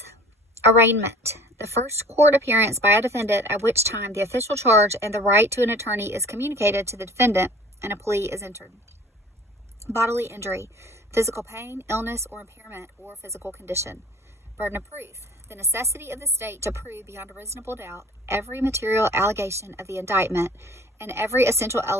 Arraignment, the first court appearance by a defendant at which time the official charge and the right to an attorney is communicated to the defendant and a plea is entered. Bodily injury, physical pain, illness, or impairment, or physical condition. Burden of proof, the necessity of the state to prove beyond a reasonable doubt every material allegation of the indictment and every essential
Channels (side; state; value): both; normal; correlation 0.48